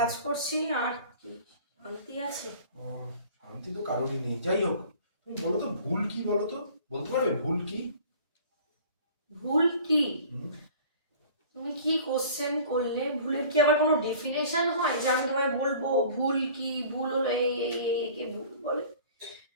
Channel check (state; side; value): inverted; both; correlation -0.46